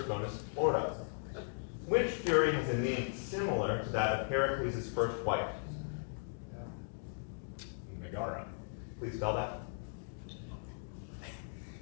bonus, Florida. Which Fury has a name similar to that of Heracles' first wife? Megara. Please spell that.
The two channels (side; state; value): right; silent; digital silence